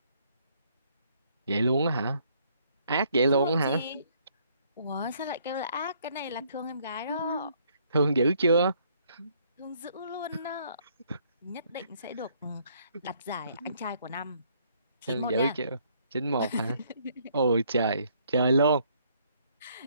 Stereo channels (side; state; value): both; inverted; correlation -0.66